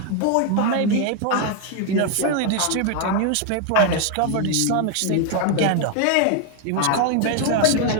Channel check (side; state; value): both; different; correlation 0.01